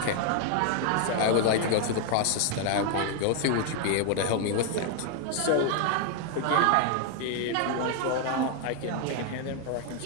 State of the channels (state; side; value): different; both; correlation 0.00